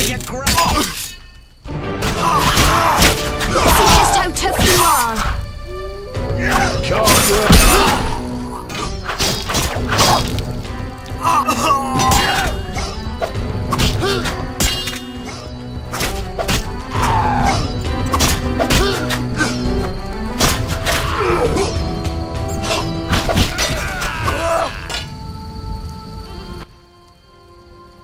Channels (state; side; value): identical; both; correlation 1.00